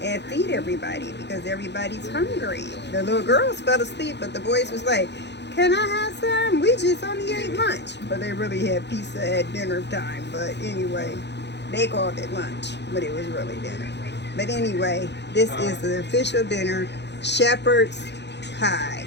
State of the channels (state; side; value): late; right; 0.50 ms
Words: and feed everybody because everybody's hungry. The little girls fell asleep, but the boys was like, "Can I have some? We just only ate lunch." But they really had pizza at dinner time. But anyway, they called it lunch, but it was really dinner. But anyway, this is the official dinner, shepherd's pie.